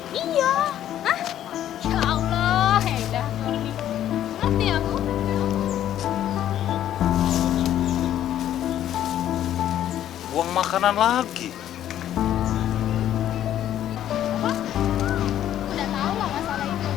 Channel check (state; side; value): quieter; right; 11.5 dB